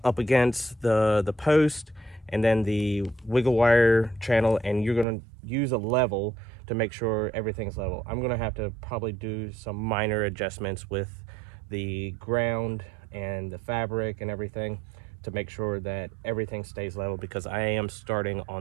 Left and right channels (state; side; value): drops out; left; at 5.1 s